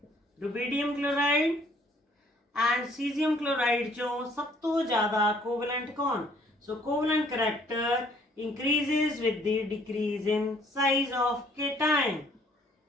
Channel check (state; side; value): normal; both; correlation 0.61